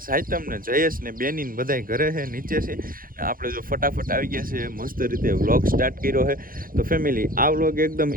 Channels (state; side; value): late; left; 0.41 ms